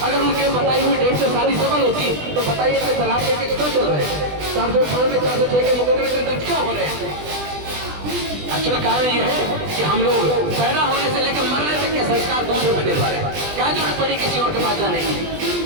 अगर उनके बताई हुई डेट से शादी सफल होती तो बताइए कि तलाक के केस क्यों चल रहे हैं? 498 406 के मुकदमे दर्ज क्यों हो रहे हैं? अच्छा कारण ये है कि हम लोग पैदा होने से लेकर मरने तक के संस्कार दूसरे पर निर्भर है। क्या जरूरत पड़ी किसी और के पास जाने की?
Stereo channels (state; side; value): late; left; 20 ms